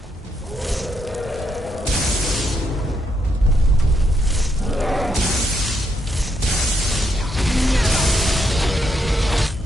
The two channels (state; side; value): normal; both; correlation 0.78